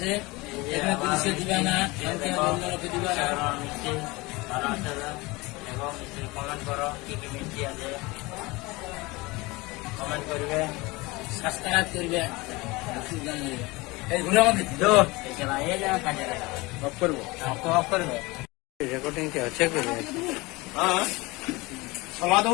এখানে পুলিশে দিবে না, লোকে দিবে না। মিষ্টি ভালো আছে। দেখো মিষ্টির কমেন্ট করো, কি কি মিষ্টি আছে কমেন্ট করবে, সাবস্ক্রাইব করবে। এইগুলো আমাদের এই যা কাজে অফ করবো। অফ করবে। রেকর্ডিং কি হচ্ছে? হ্যাঁ, সমাধ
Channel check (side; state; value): right; quieter; 23.2 dB